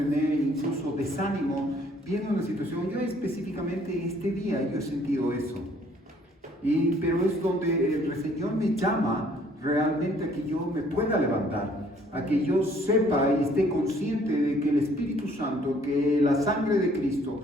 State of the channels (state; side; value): normal; both; correlation 0.61